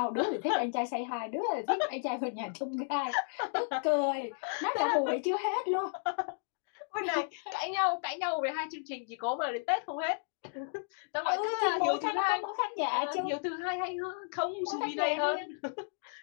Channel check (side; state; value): right; silent; digital silence